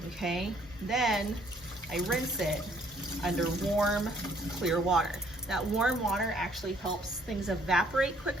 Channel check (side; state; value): both; normal; correlation 0.63